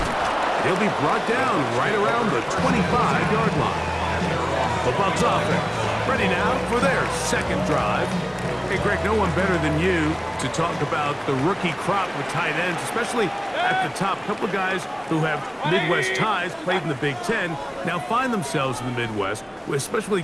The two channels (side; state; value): both; identical; correlation 1.00